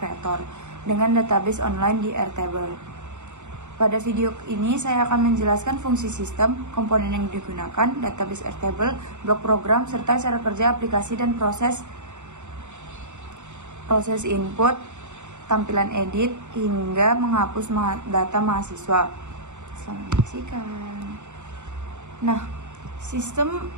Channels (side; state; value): left; late; 0.84 ms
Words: dengan database online di Airtable. Pada video ini saya akan menjelaskan fungsi sistem, komponen yang digunakan, database Airtable, blok program, serta cara kerja aplikasi dan proses input, tampilan edit, hingga menghapus data mahasiswa. Selamat menyaksikan. Nah, sistem